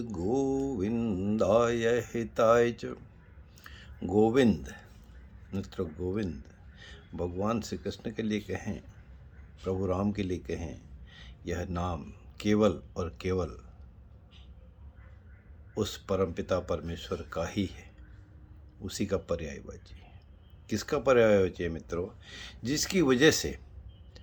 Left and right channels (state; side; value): identical; both; correlation 1.00